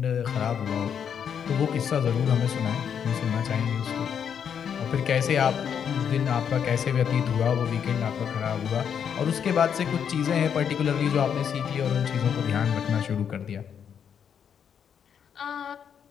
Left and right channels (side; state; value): right; quieter; 7.9 dB